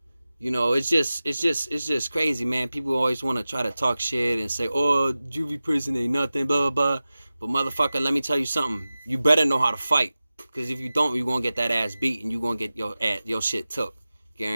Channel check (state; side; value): inverted; both; correlation -0.96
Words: You know, it's just crazy, man. People always want to try to talk shit and say, oh, juvie prison ain't nothing, blah, blah, blah. But motherfucker, let me tell you something. You better know how to fight. Because if you don't, you're going to get that ass beat and you're going to get your shit took.